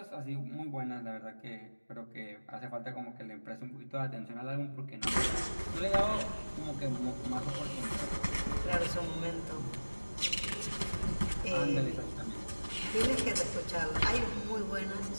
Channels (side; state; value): both; inverted; correlation -1.00